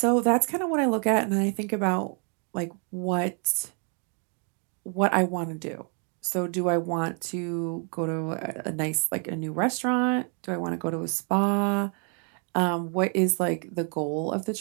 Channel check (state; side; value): quieter; left; 38.9 dB